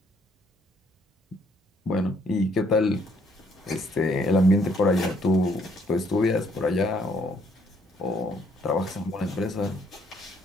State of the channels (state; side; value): normal; both; correlation 0.67